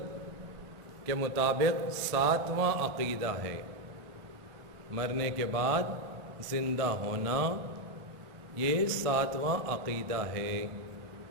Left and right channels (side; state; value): left; late; 1.4 ms